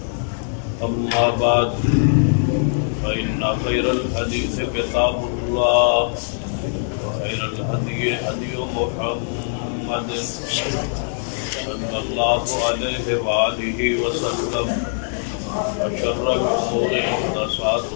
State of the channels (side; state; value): right; silent; digital silence